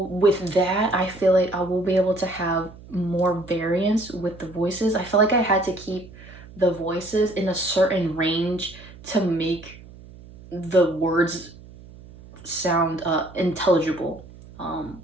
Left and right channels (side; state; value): right; noise; hum, 19 dB below the sound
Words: with that, I feel like I will be able to have more variance with the voices. I feel like I had to keep the voices in a certain range to make the words sound intelligible. I